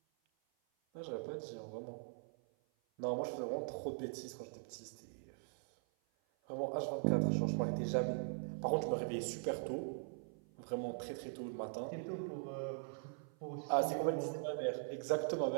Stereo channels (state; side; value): silent; left; 50 dB below the other